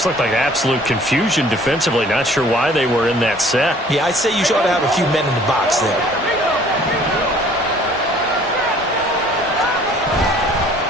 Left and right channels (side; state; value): both; normal; correlation 0.54